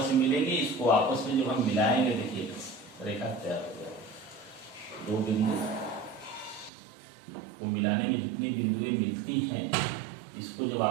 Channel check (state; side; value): drops out; left; at 6.7 s